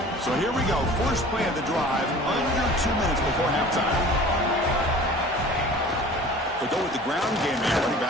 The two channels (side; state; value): both; normal; correlation 0.44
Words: So here we go. First play of the drive, under 2 minutes before halftime. They go with the ground game there. Running